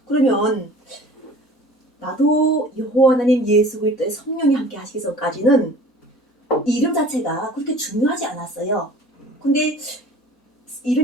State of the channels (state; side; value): normal; both; correlation 0.46